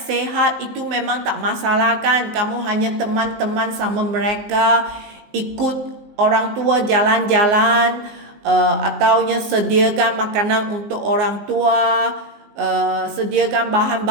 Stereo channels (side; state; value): left; late; 19 ms